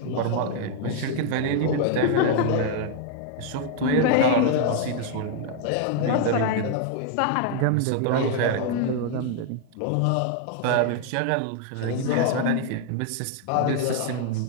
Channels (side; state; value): both; different; correlation 0.00